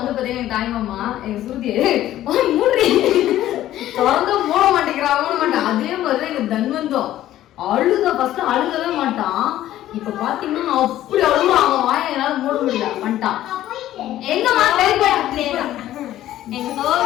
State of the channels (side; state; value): right; quieter; 13.4 dB